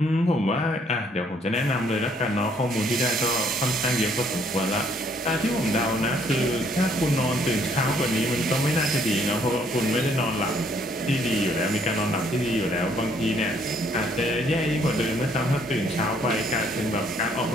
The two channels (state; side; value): normal; both; correlation 0.66